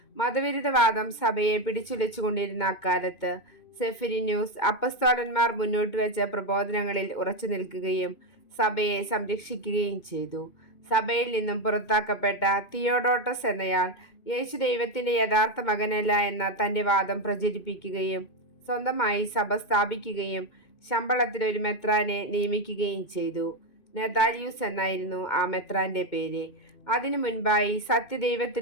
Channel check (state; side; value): late; right; 2.2 ms